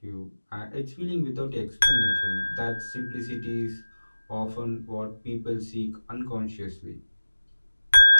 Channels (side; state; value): both; inverted; correlation -1.00